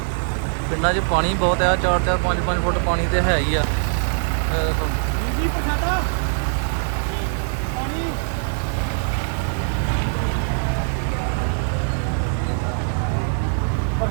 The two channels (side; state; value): left; silent; digital silence